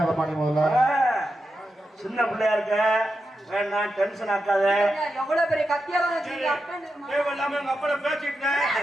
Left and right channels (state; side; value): normal; both; correlation 0.88